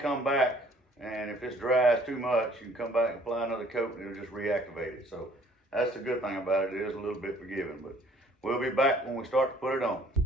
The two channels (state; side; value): normal; both; correlation 0.58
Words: come back, and if it's dries too much, you can come back and apply another coat and it'll just reactivate it. So that's the good thing about it. It is a little bit forgiving, but we'll be back when we start to put it on.